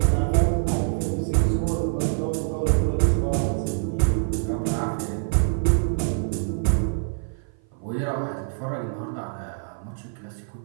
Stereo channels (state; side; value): silent; left; 56 dB below the other